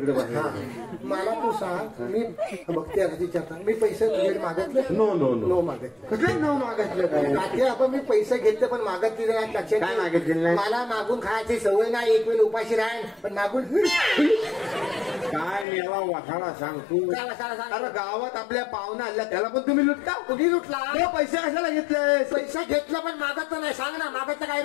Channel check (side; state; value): right; drops out; at 15.7 s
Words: मला तू सांग मी बघते विचारता मी पैसे तुझ्याकडे मागितले नो मागितले नो मागितलं काय आपण मी पैसे घेतले पण मागितले नाही लक्षात काय मागितलेलं नाही मला मागून खायची सवय नाही एक वेळ उपाशी राहील पण मागून काय मेवा वाठाडा सांग तू अरे गावात आपल्या पाहुणा आल्या त्याला पण तुम्ही लुटता कुठे लुटला पैसे कशाला घेतले पैसे घेतलं पण मागत नाही सांग ना मागत काय